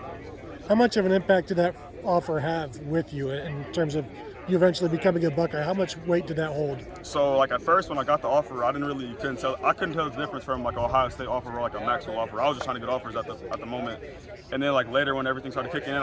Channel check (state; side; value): identical; both; correlation 1.00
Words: How much of an impact did that offer have with you in terms of you eventually becoming a Buckeye? How much weight did that hold? So like at first when I got the offer, I couldn't tell the difference from like an Ohio State offer or like a Maxwell offer. I was just trying to get offers at the moment. And then like later when everything started kicking in,